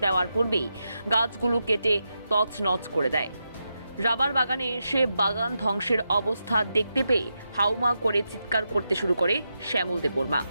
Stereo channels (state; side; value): inverted; both; correlation -0.86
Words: দেওয়ার পূর্বেই গাছগুলো কেটে তছনছ করে দেয়। রাবার বাগানে এসে বাগান ধ্বংসের অবস্থা দেখতে পেয়ে হাউমা করে চিৎকার করতে শুরু করে শ্যামল দেববর্মা।